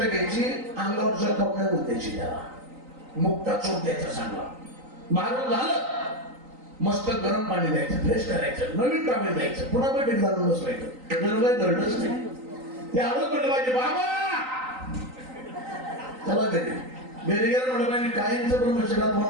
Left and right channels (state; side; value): late; left; 3.9 ms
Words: घ्यायची, अंगावर जखम द्यायची, त्याला मुक्ता चोप द्यायचा चांगला. मारून झालं, मस्त गरम पाणी द्यायचं, फ्रेश करायचं, नवीन कामे द्यायचं, पुन्हा बैठक घालून बसवायचं. जर काही घडलंच नाही, ते आलोच म्हटलं पाहिजे, बाबा चला घरी. घरी गेलं म्हटलं पाहिजे, काहींचं ब्रह्मचर्यात